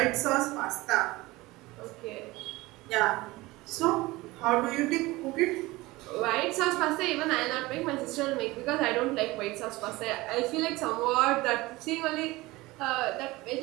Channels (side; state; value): left; quieter; 20.4 dB